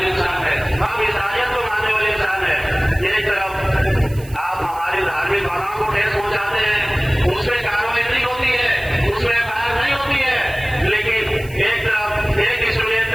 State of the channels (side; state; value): right; noise; hiss, 21 dB below the sound